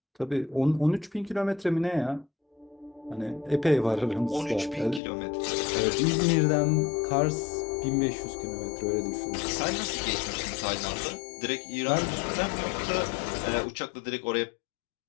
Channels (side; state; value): right; drops out; at 5.0 s